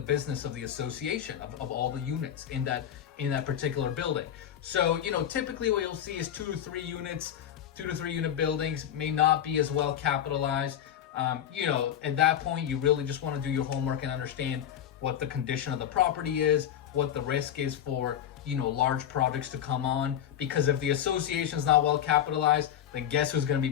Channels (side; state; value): right; quieter; 10.0 dB